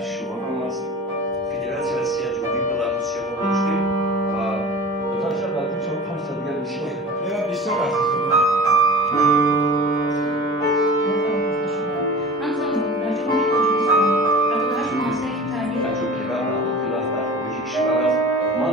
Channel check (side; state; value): both; normal; correlation 0.38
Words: شما هم از فدراسیون سیاه جمهوری بلاروسیا